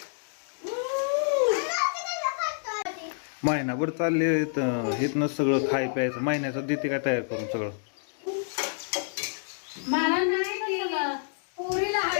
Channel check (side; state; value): right; silent; digital silence